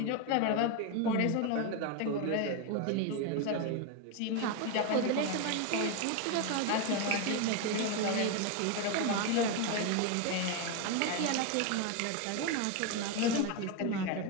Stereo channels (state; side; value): different; both; correlation 0.02